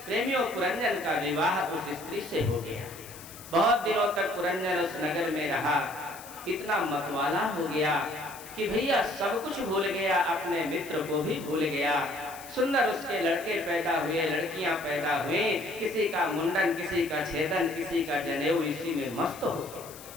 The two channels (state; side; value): noise; left; hiss, 16 dB below the sound